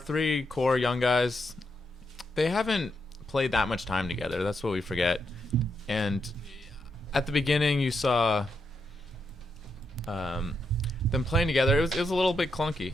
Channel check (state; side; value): normal; both; correlation 0.82